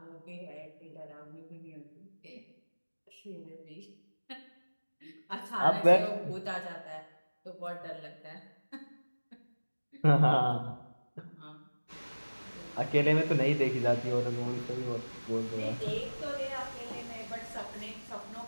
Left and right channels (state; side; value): inverted; both; correlation -1.00